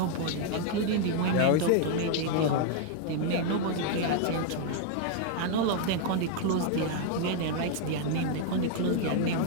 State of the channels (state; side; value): different; both; correlation 0.00